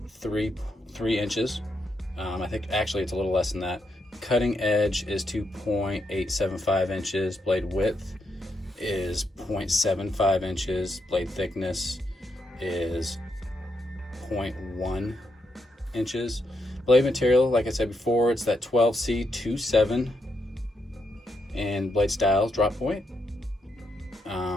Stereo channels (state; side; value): normal; both; correlation 0.80